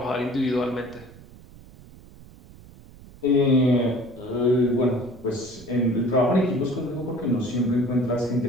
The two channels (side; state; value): right; noise; rumble, 21 dB below the sound